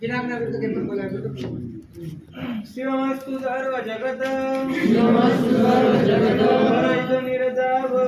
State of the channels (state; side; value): identical; both; correlation 1.00